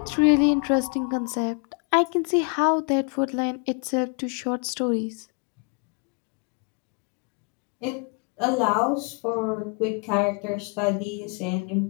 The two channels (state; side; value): quieter; right; 35.4 dB